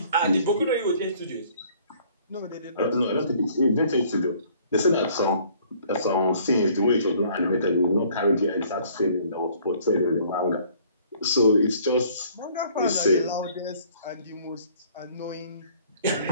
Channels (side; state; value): both; inverted; correlation -0.58